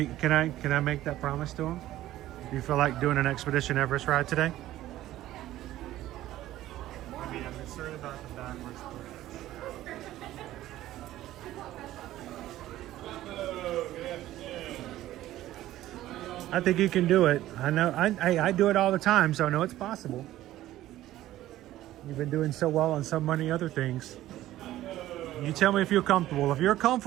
Can I make that promise to him? Do you feel like doing an Expedition Everest ride today? I mean, I'm concerned about the backwards push. I think you can do it. I know. I do it all the time, so I know it's possible. You've been doing so well on so many other things. You tell me if you're comfortable. If you're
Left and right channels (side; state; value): left; quieter; 14.5 dB